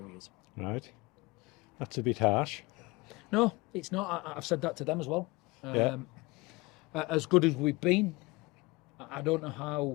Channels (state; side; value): quieter; right; 23.4 dB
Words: Right, that's a bit harsh. No, it's not. I've said that to them as well. Yeah. As good as we've been, I don't know